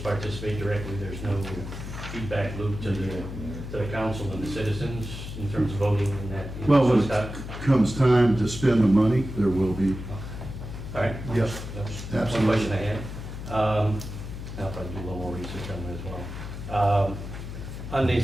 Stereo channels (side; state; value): left; noise; hum, 9 dB below the sound